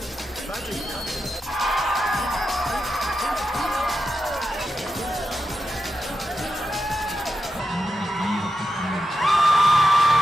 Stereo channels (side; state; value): both; normal; correlation 0.88